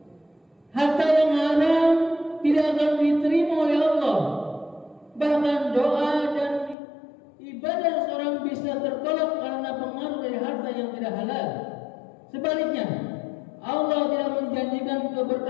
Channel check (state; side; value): drops out; right; at 6.8 s